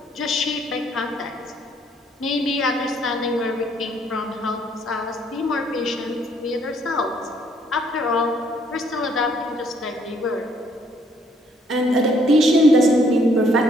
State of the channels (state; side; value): normal; both; correlation 0.66